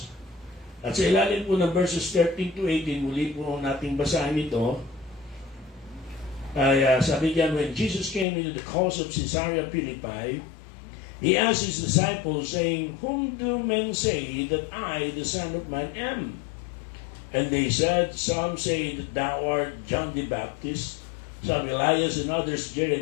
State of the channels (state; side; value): drops out; right; at 8.2 s